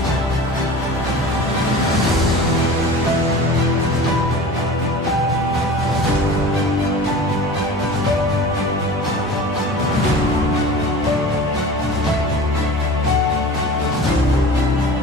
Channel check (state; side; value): normal; both; correlation 0.37